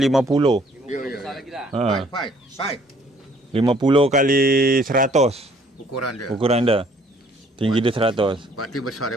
Ya. Baik. 50 kali 100 ukuran dia. Tinggi dia 100. Berarti besar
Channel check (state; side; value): normal; both; correlation 0.60